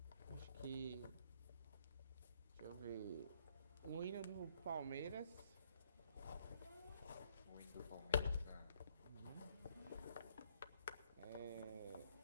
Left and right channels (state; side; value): inverted; both; correlation -0.68